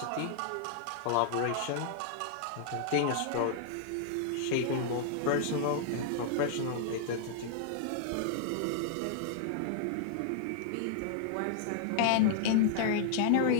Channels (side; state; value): both; different; correlation -0.01